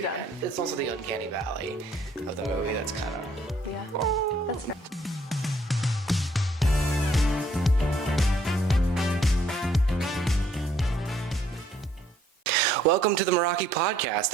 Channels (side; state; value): both; normal; correlation 0.65